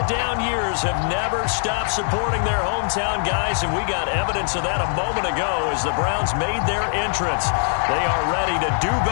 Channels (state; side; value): silent; right; 64 dB below the other